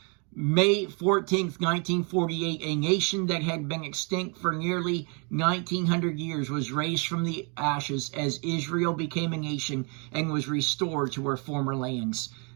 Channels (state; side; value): quieter; left; 34.8 dB